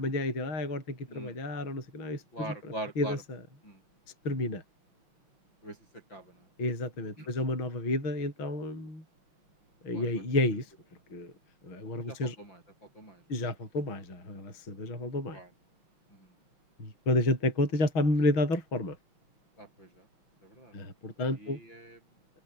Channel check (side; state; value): right; late; 6.3 ms